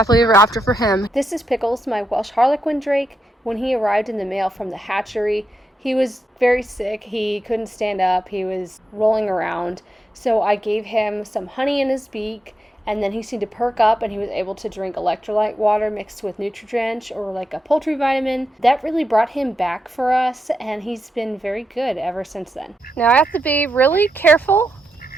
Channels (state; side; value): normal; both; correlation 0.85